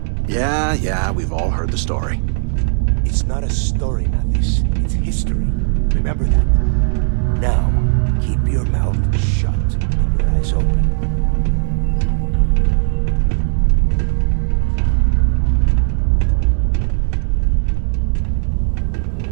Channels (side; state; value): left; silent; digital silence